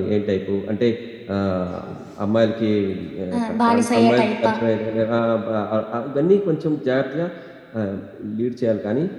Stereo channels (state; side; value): identical; both; correlation 1.00